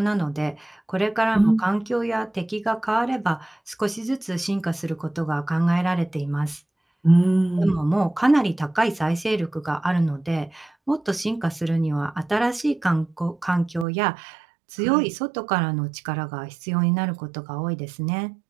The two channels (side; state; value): left; drops out; at 13.9 s